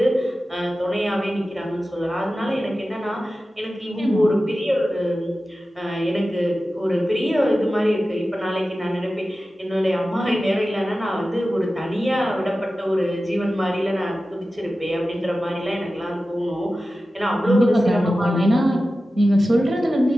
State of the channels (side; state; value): both; normal; correlation 0.94